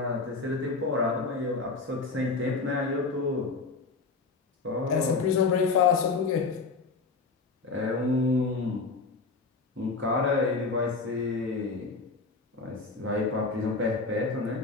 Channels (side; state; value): right; quieter; 4.2 dB